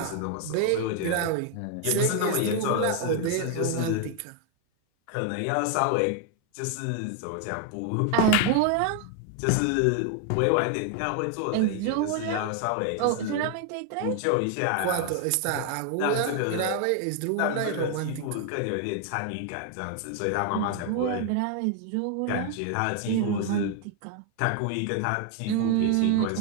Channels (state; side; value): different; both; correlation 0.00